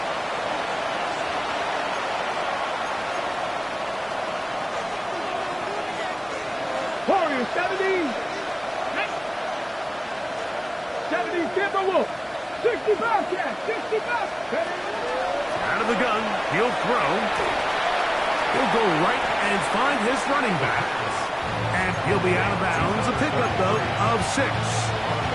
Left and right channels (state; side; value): identical; both; correlation 1.00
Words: Warriors 70. 70 Timberwolves. 65 catch. 65. Out of the gun, he'll throw. He'll go right and find his running back. And he'll be out of bounds. A pickup, though, of 6.